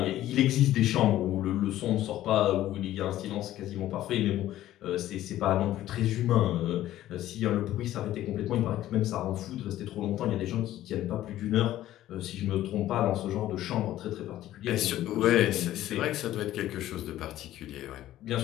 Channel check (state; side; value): quieter; right; 13.8 dB